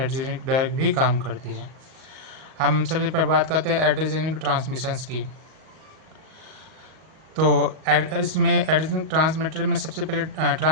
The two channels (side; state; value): left; late; 38 ms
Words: ड्रग भी काम करती है। हम सबसे पहले बात करते हैं एड्रेजेनिक ट्रांसमिशंस की। तो इसमें एड्रेजेनिक ट्रांसमीटर में सबसे पहले